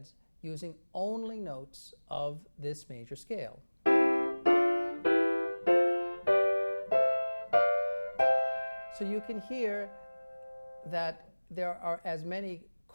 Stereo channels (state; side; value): inverted; both; correlation -1.00